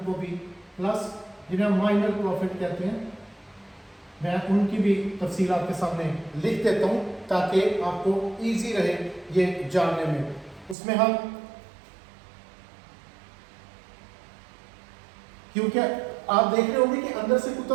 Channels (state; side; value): drops out; left; at 10.8 s